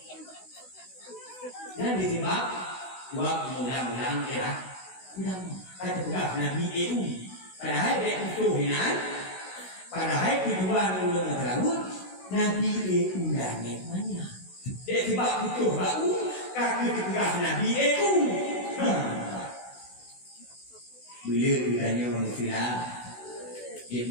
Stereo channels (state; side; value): late; right; 16 ms